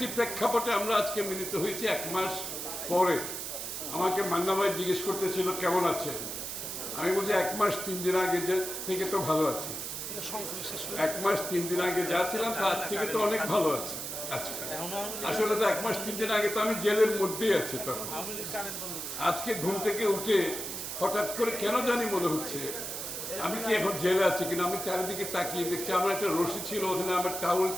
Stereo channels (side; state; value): right; noise; hiss, 5 dB below the sound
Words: প্রেক্ষাপটে আমরা আজকে মিলিত হয়েছি এক মাস পরে। আমাকে মান্না ভাই জিজ্ঞেস করতেছিল কেমন আছে, আমি বলছি 1 মাস 3 দিন আগে থেকে তো ভালো আছি। 1 মাস 3 দিন আগে যা ছিলাম তার থেকে তো অনেক ভালো আছি। আসলে তো 1 মাস 3 দিন আগে তো আমি জেলের মধ্যেই আছি। তখন আজকে ঘুম থেকে উঠে হঠাৎ করে কেন জানি মনে হচ্ছে আমি কি এখন জেলে আছি কিনা। আমি চারিদিকে তাকিয়ে দেখছি আমার একটা রশি ছিল, ওখানে আমার টাউল